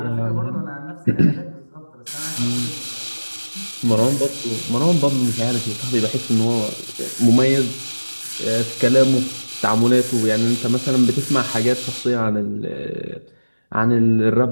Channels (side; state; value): both; inverted; correlation -1.00